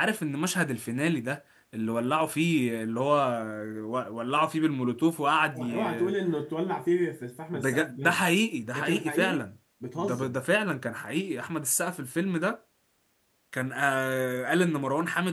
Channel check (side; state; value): both; identical; correlation 1.00